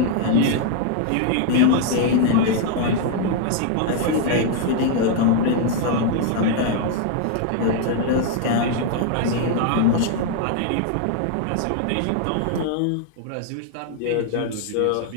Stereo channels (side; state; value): both; different; correlation 0.00